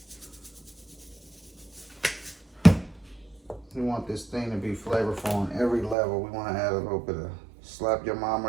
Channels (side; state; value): left; drops out; at 6.0 s